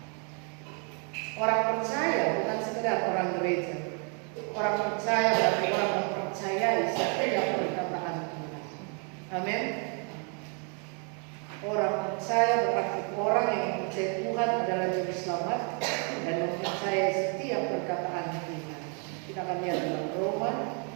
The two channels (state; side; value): quieter; left; 38.3 dB